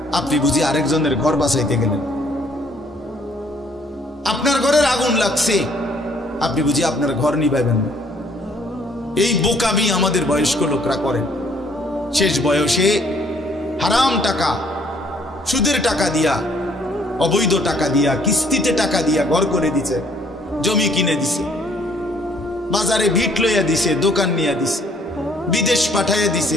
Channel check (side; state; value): both; normal; correlation 0.63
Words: আপনি বুঝি আরেকজনের ঘর বাঁচাইতে গেলেন। আপনার ঘরের আগুন লাগছে, আপনি বুঝি আপনার ঘর নিভাইবেন না। এই বোকামি আমাদের বয়স্ক লোকরা করেন। শেষ বয়সে হারাম টাকা, সুদের টাকা দিয়া, অবৈধ টাকা দিয়া, কিস্তিতে টাকা দিয়া ঘর করে দিছে, জমি কিনে দিছে, বাজারে ভিট লইয়া দিছে, দোকান নিয়ে দিছে, বিদেশ পাঠাইয়া দিছে,